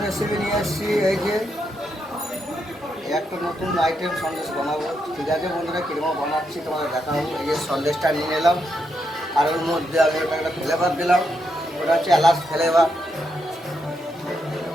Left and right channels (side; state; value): both; normal; correlation 0.81